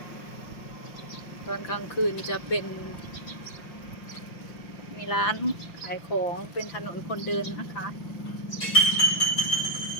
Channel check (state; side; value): late; right; 6.4 ms